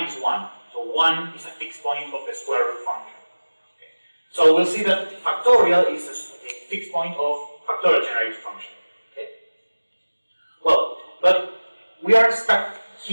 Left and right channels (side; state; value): both; inverted; correlation -1.00